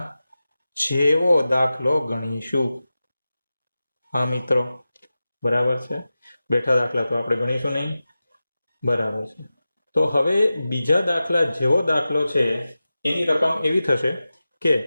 જેવો દાખલો ગણીશું. હા મિત્રો, બરાબર છે. બેઠા દાખલા તો આપણે ગણીશું નહીં. બરાબર છે. તો હવે બીજા દાખલા જેવો દાખલો છે એની રકમ એવી થશે કે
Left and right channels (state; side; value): inverted; both; correlation -0.94